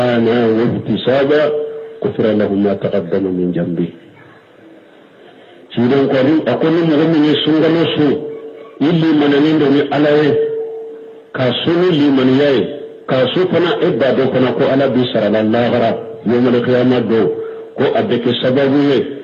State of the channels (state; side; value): identical; both; correlation 1.00